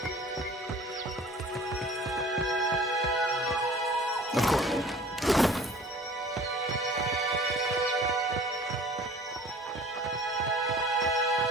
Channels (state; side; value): normal; both; correlation 0.46